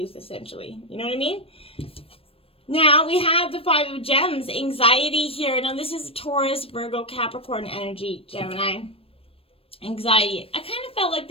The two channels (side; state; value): right; late; 0.28 ms